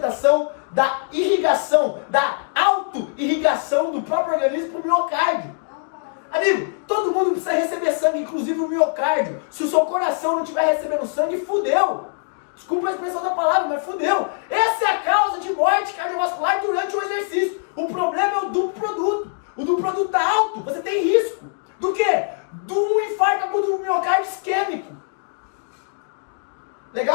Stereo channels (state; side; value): silent; right; digital silence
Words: da irrigação, da auto-irrigação do próprio organismo para o miocárdio. Amigo, todo mundo precisa receber sangue, inclusive o miocárdio. Se o seu coração não estiver recebendo sangue, fudeu. Desculpa a expressão da palavra, mas fudeu. Essa é a causa de morte cardiovascular durante o exercício. O problema é o duplo produto. O duplo produto está alto, você tem risco. Do quê? De um infarto agudo do miocárdio isquêmico.